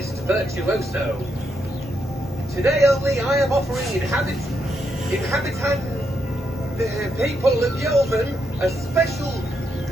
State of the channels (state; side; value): normal; both; correlation 0.80